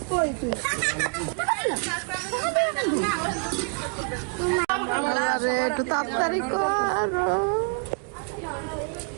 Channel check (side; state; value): left; quieter; 39.0 dB